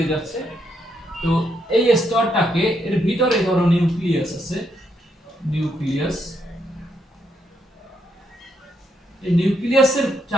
যাচ্ছে। তো এই স্তরটাকে, এর ভিতরে ধরো নিউক্লিয়াস আছে, নিউক্লিয়াস, এই নিউক্লিয়াসের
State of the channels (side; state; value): both; normal; correlation 0.77